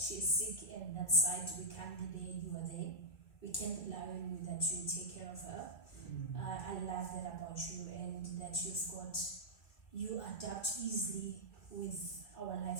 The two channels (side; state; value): right; late; 2.4 ms